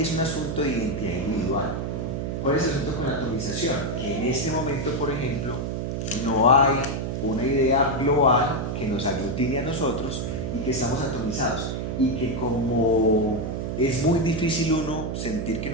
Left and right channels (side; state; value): right; noise; hum, 3 dB below the sound